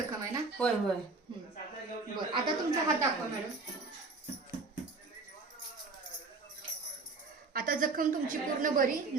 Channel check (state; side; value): quieter; left; 3.9 dB